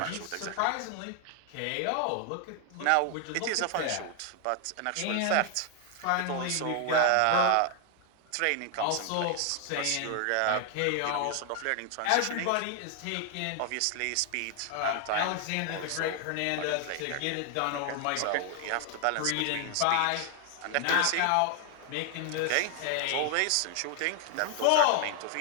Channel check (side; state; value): both; different; correlation 0.00